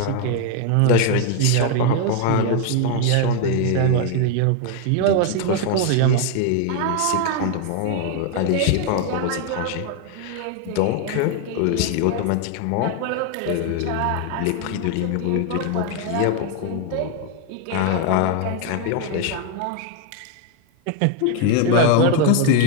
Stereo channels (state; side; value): different; both; correlation 0.01